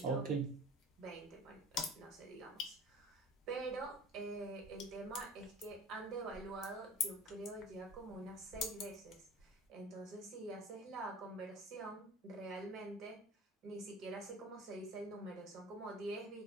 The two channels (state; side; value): normal; both; correlation 0.40